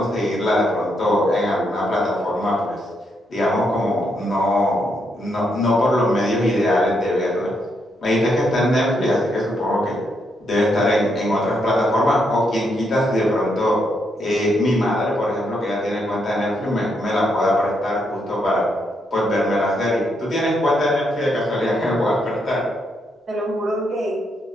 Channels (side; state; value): both; normal; correlation 0.78